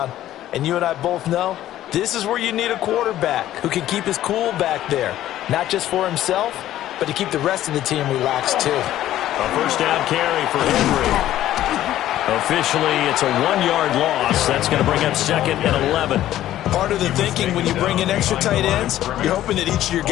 And you and I both know this is where you need a quarterback who can keep his cool back there. Not just for himself, but to keep the rest of the team relaxed too. A first down carry for Henry. Officially, it's a 1-yard loss. That's going to bring up 2nd and 11. Part of the thinking when you bring in extra tight ends, you're hoping that each of your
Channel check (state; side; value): quieter; right; 13.2 dB